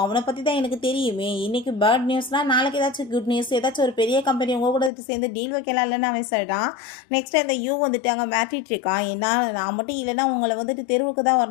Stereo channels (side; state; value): right; drops out; at 4.9 s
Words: அவனை பற்றி தான் எனக்கு தெரியுமே, இன்றைக்கி பேட் நியூஸ்னால் நாளைக்கு ஏதாச்சும் குட் நியூஸ், ஏதாச்சும் ஒரு பெரிய கம்பெனி உங்கள் கூட சேர்ந்து டீல் வைக்கலாம் இல்லைன்னு அவன் சொல்லிட்டான். நெக்ஸ்ட் அந்த யூ வந்துட்டு அங்கே மாட்டிட்டு இருக்கான். ஏன்னா நான் மட்டும் இல்லைன்னா உங்களை வந்துட்டு தெருவுக்கு தான்